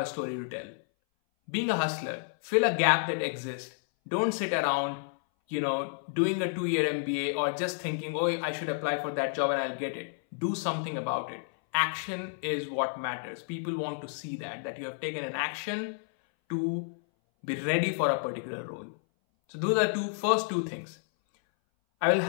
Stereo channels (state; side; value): silent; right; 58 dB below the other